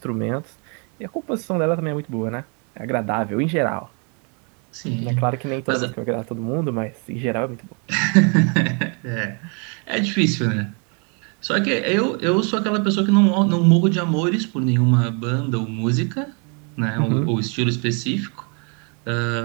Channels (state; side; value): quieter; left; 36.3 dB